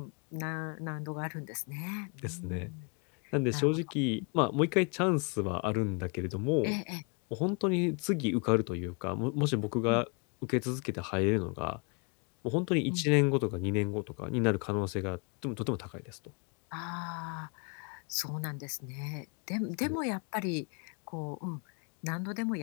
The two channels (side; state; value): right; quieter; 34.9 dB